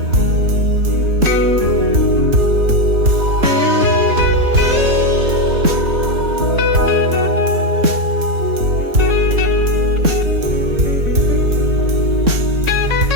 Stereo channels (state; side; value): late; left; 3.6 ms